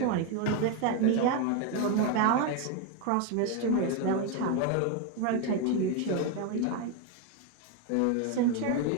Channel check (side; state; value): both; different; correlation 0.02